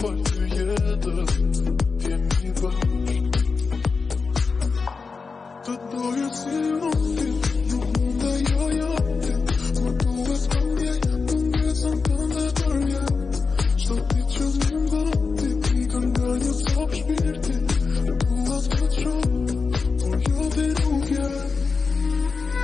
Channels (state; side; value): quieter; right; 4.7 dB